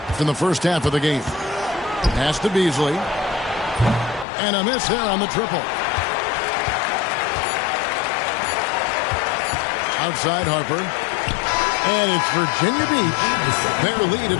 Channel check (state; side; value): drops out; right; at 4.2 s